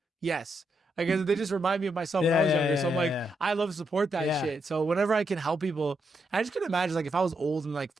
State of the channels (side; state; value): both; normal; correlation 0.81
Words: yes. Like, they just remind me of myself when I was younger. So I'm like, I love to support that shit. So whenever I can help people, I just couldn't imagine, like, if I was old and like